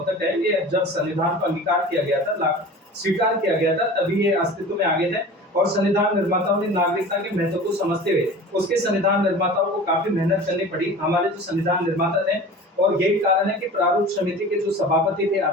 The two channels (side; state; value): both; normal; correlation 0.38